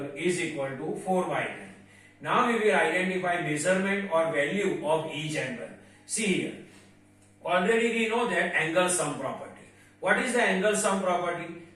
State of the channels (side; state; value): both; identical; correlation 1.00